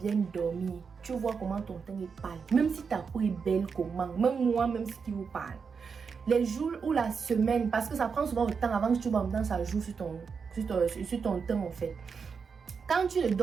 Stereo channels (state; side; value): quieter; left; 5.7 dB